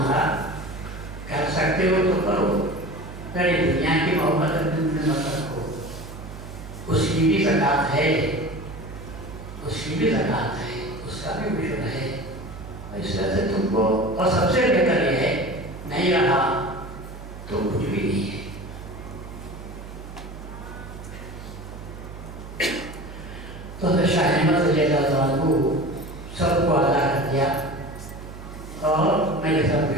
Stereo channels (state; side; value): noise; right; hum, 13 dB below the sound